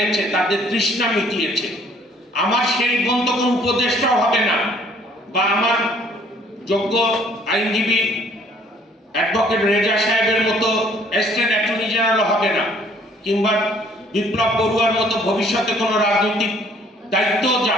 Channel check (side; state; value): both; normal; correlation 0.60